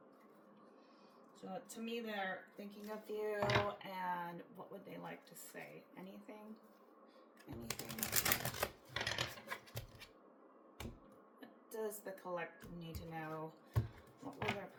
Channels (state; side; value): identical; both; correlation 1.00